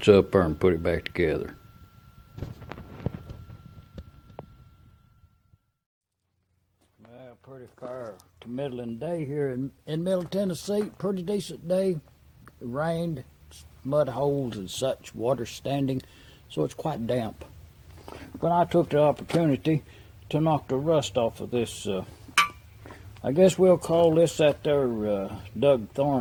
up there and put it back together. Well, pretty fair to middling day here in Middle Tennessee. Pretty decent day. It rained, mud holes and such, water standing, so it's quite damp. But I took the opportunity to knock the rust off of this. I guess we'll call this that there Doug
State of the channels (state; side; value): identical; both; correlation 1.00